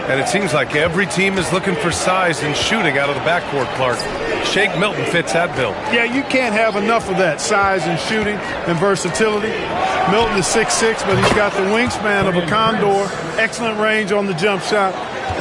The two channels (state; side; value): identical; both; correlation 1.00